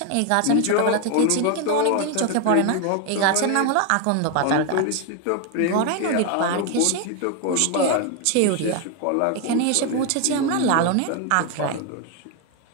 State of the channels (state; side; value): different; both; correlation 0.01